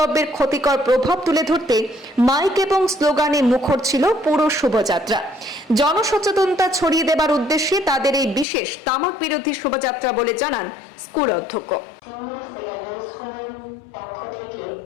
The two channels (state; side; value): drops out; right; at 8.5 s